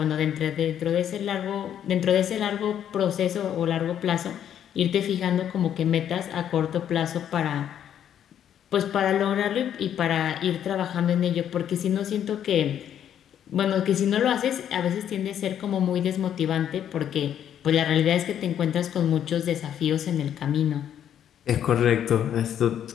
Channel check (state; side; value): quieter; right; 9.8 dB